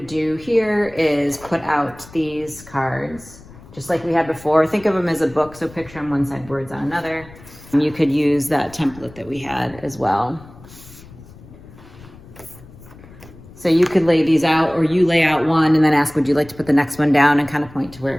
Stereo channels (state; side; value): noise; left; rumble, 20 dB below the sound